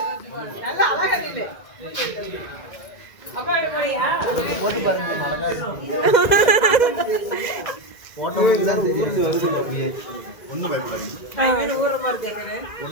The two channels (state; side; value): late; right; 2.0 ms